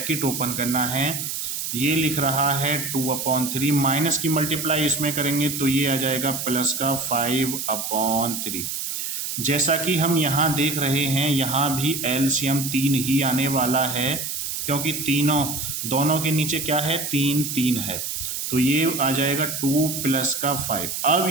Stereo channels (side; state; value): right; noise; hiss, 4 dB below the sound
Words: ओपन करना है। ये लिख रहा है 2/3, माइनस की मल्टीप्लाई इसमें करेंगे तो ये आ जाएगा प्लस का 5/3। जैसा कि हम यहाँ देख रहे हैं यहाँ भी एलसीएम 3 ही आने वाला है, क्योंकि दोनों के नीचे क्या है, 3 है, तो ये आ जाएगा 2 प्लस का 5। अब